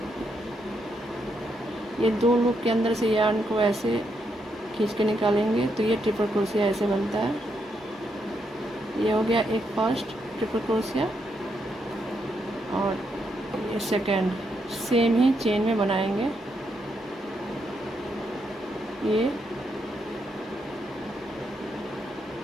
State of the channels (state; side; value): normal; both; correlation 0.79